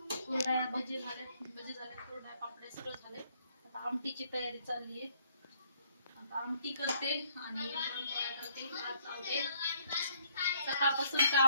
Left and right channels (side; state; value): both; inverted; correlation -0.66